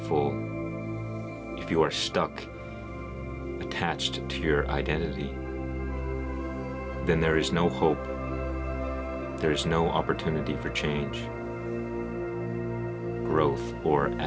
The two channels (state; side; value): identical; both; correlation 1.00